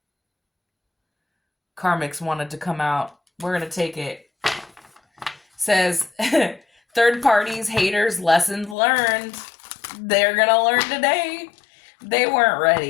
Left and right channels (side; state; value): right; drops out; at 8.8 s